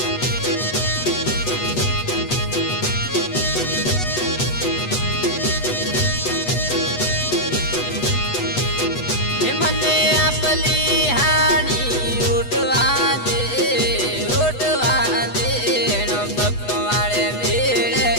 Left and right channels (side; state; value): right; late; 8.1 ms